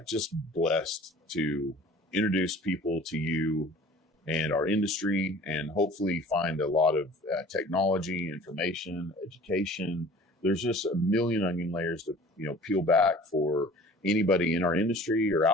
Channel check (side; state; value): both; normal; correlation 0.46